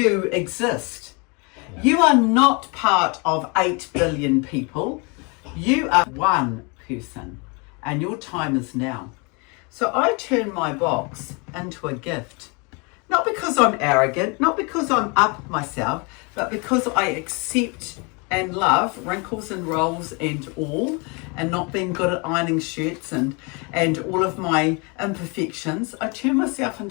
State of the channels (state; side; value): quieter; right; 31.0 dB